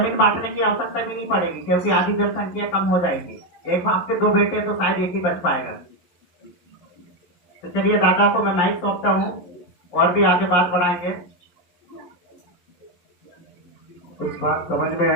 बांटने की आवश्यकता भी नहीं पड़ेगी क्योंकि आधी जनसंख्या कम हो जाएगी। एक बाप के 2 बेटे तो शायद एक ही बच पाएगा। तो चलिए दादा को मैं माइक सौंपता हूँ और भी आगे बात बढ़ाएंगे। कुछ बात समझ में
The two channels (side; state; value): right; late; 11 ms